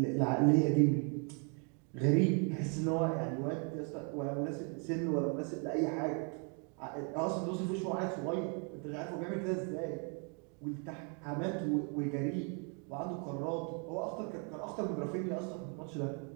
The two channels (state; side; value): quieter; left; 38.2 dB